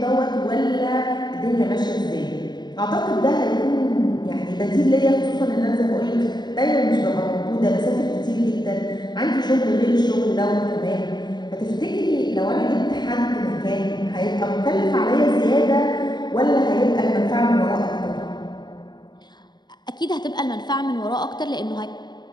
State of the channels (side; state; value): right; late; 0.21 ms